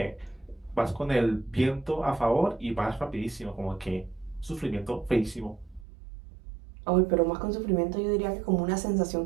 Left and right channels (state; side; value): drops out; left; at 5.9 s